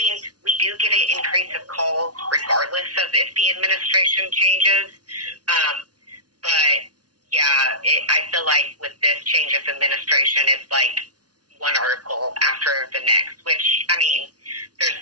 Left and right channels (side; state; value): left; late; 0.69 ms